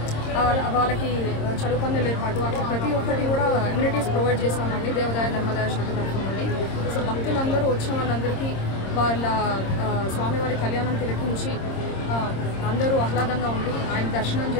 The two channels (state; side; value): late; right; 26 ms